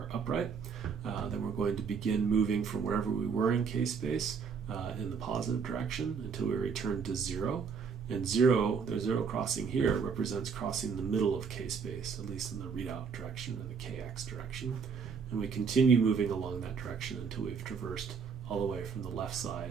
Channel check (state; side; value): quieter; left; 5.9 dB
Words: upright, then we're going to begin moving from wherever we were in k-space in the positive direction until we return to 0. And 0, the 0 crossing here represents crossing the middle of k-space, at least in the readout direction or the kx direction. And we continue moving along that direction until we've traversed all the way from the left